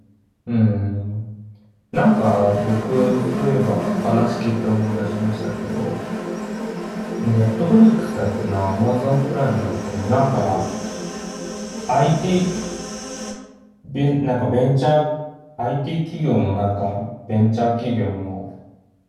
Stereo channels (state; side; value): identical; both; correlation 1.00